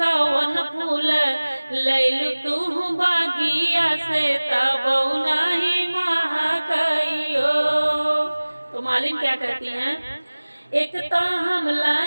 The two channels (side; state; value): both; inverted; correlation -1.00